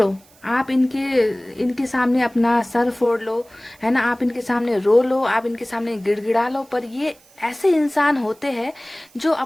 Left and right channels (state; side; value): noise; right; hiss, 28 dB below the sound